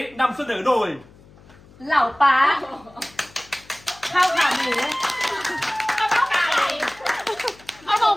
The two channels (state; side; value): noise; left; hum, 25 dB below the sound